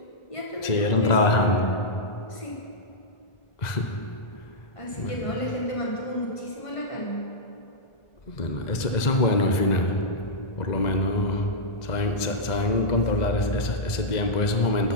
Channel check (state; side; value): late; right; 1.9 ms